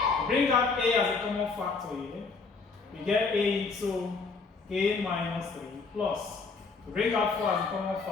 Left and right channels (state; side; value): quieter; right; 4.4 dB